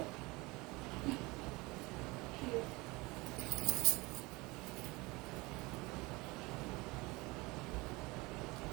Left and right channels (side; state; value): left; quieter; 23.5 dB